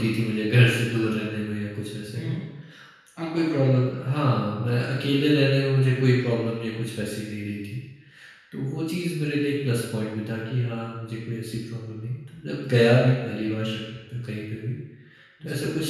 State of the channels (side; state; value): both; identical; correlation 1.00